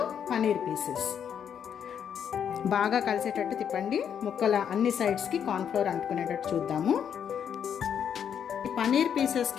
paneer pieces. బాగా కలిసేటట్టు తిప్పండి. ముక్కల అన్ని సైడ్స్కి కార్న్ఫ్లోర్ అంటుకునేటట్టు చూద్దాము. ఈ పన్నీర్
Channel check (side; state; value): right; quieter; 8.3 dB